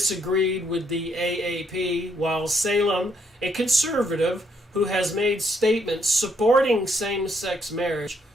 with the AAP, while Salem, a conservative who has made statements supporting same-sex marriage,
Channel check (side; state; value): both; normal; correlation 0.72